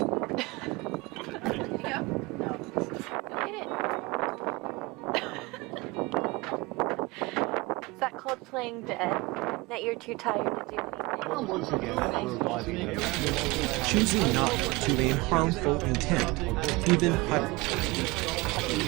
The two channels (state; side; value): quieter; left; 23.8 dB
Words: feeling dead? That you're too tired to do anything? Well, once again, Choosing not to a harmful intent, even